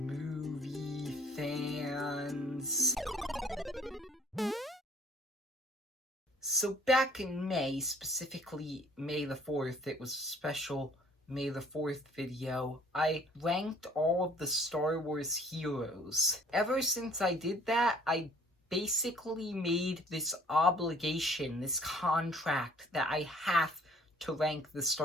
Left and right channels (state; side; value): normal; both; correlation 0.56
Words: fans? So back in May, specifically May the 4th, it was a special May the 4th video, I ranked all of the Star Wars heroes. Ever since I did that, I basically made this obligation, this contract, that I have to rank the